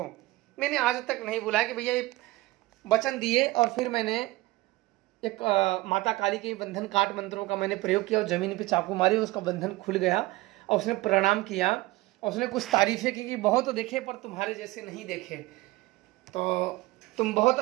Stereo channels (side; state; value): left; quieter; 19.7 dB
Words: मैंने आज तक नहीं बुलाया कि भैया ये वचन दिए और फिर मैंने एक माता काली के बंधन काट मंत्रों का मैंने प्रयोग किया और ज़मीन पे चाकू मारी, उसका बंधन खुल गया और उसने प्रणाम किया और उसने कुछ तारीफ़ें की कि बहुत देखे पर तुम्हारे जैसे नहीं देखे, तो तुम बहुत